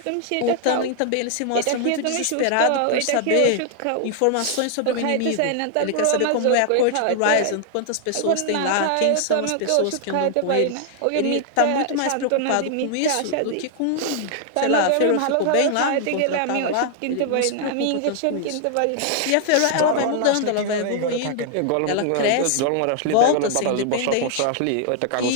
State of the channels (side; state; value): both; different; correlation 0.00